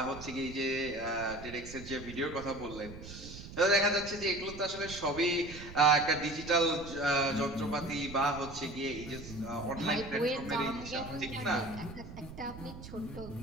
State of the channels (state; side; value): noise; right; rumble, 13 dB below the sound